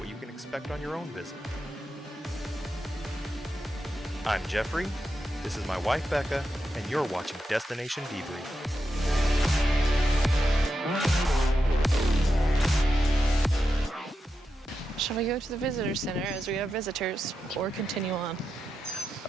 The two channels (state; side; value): normal; both; correlation 0.87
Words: you can expect on your own visit. I'm Jeffrey, this is my wife Becca, and you're watching Destination Debrief. Shall we go to the visitor center as we have visitors, or continue on?